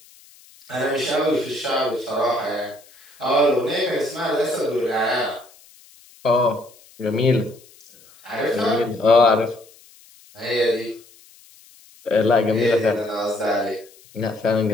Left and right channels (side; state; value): left; noise; hiss, 26 dB below the sound